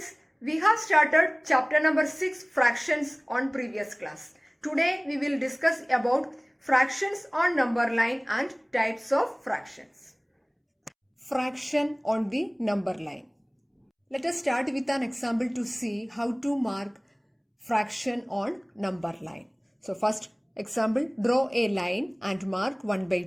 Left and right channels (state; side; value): identical; both; correlation 1.00